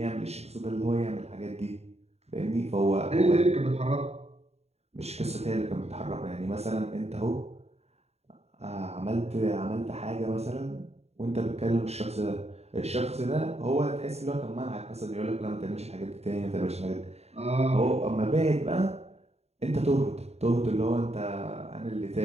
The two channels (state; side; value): late; left; 0.31 ms